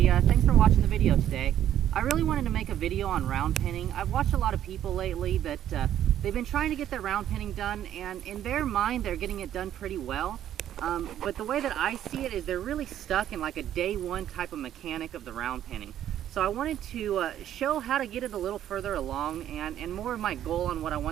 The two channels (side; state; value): left; quieter; 11.2 dB